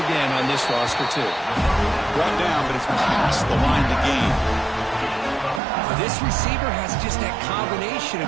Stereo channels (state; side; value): drops out; left; at 5.6 s